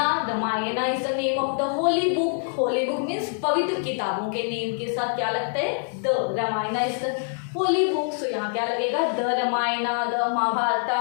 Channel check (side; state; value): right; silent; digital silence